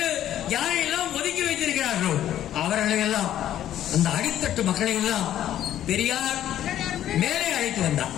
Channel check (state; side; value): quieter; right; 11.7 dB